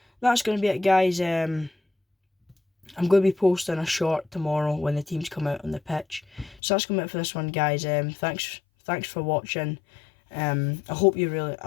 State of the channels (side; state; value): right; drops out; at 6.6 s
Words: that's going to be it, guys. I'm going to be posting a short tomorrow when the teams come out on the pitch. So that's going to be it for this one, guys. Thanks for watching. I hope you